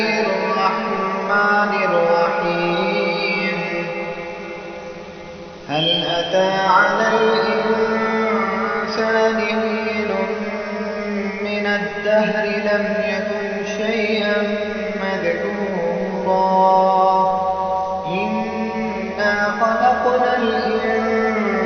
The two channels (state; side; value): identical; both; correlation 1.00